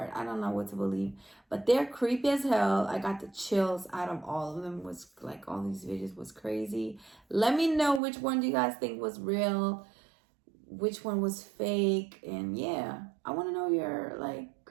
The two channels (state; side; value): drops out; left; at 8.0 s